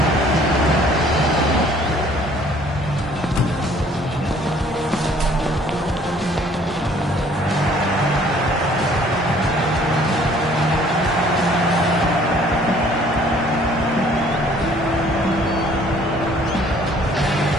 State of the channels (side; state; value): both; normal; correlation 0.57